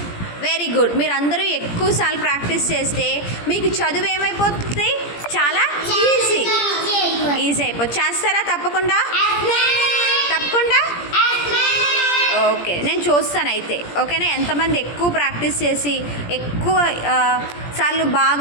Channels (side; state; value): right; late; 17 ms